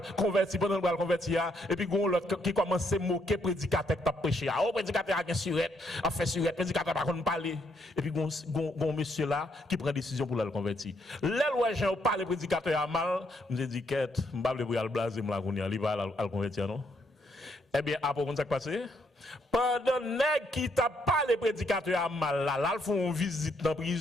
convertir, pendant le convertir, et puis l'autre qui commence à moquer le prédicateur qui a prêché. Le prédicateur a une surette, a fait surette, le prédicateur n'a pas parler. Et puis un monsieur là qui prend décision pour le convertir. Là, où j'ai parlé, le prédicateur a mal, je me dis, quête, je ne vais pas le blaser, il va le convertir, non? Eh bien, après, comment ça passé? Pendant qui t'a pas les prédicateurs à mal là, ils font une visite dans la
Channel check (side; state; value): both; normal; correlation 0.74